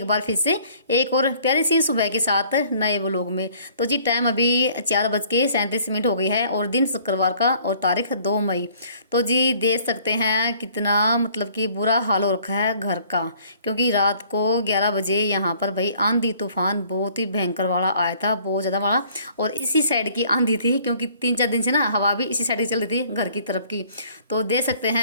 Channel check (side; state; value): both; inverted; correlation -0.57